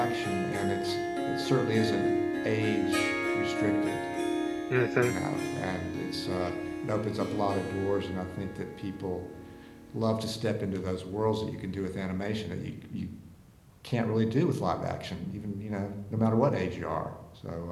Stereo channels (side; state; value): both; identical; correlation 1.00